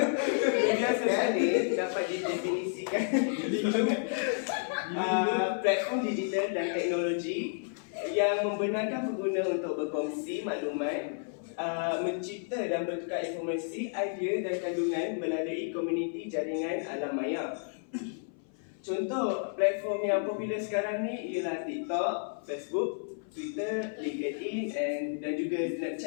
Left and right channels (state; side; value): silent; right; 55 dB below the other